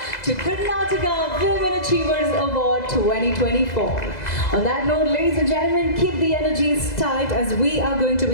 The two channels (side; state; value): right; late; 2.0 ms